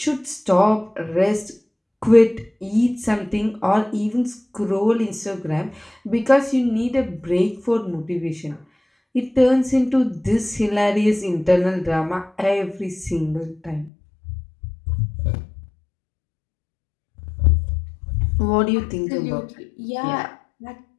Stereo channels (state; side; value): drops out; right; at 13.9 s